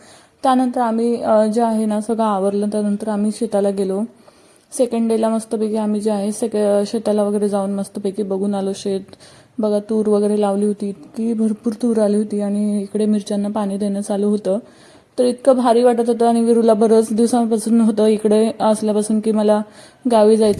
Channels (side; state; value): both; identical; correlation 1.00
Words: त्यानंतर आम्ही जे आहे ना सगळं आवरलं. त्यानंतर आम्ही शेताला गेलो. सेकंड डेला मस्तपैकी आम्ही जे आहे शेताला वगैरे जाऊन मस्तपैकी बघून आलो शेत. बघा तूर वगैरे लावली होती, इतकी भरपूर तूर आली होती. आणि इकडे मिरच्यांना पाणी देणं चालू होतं. तर इतकं भारी वाटत होतं. आणि विरूला बरंच दिवसांपासून होतं इकडे असल्यापासून की मला गावी